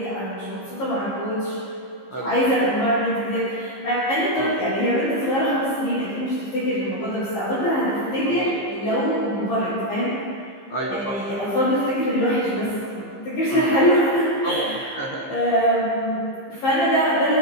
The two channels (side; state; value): right; late; 15 ms